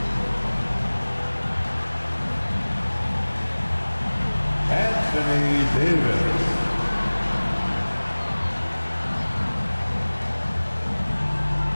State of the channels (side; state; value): both; inverted; correlation -1.00